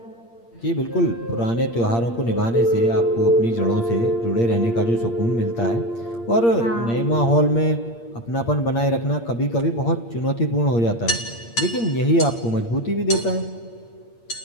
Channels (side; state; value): right; late; 8.6 ms